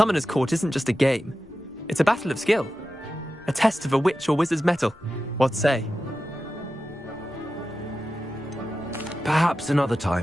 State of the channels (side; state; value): both; normal; correlation 0.92